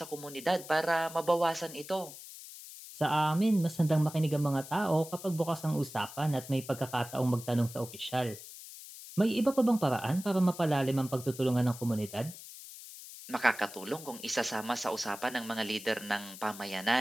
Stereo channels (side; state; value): left; noise; hiss, 14 dB below the sound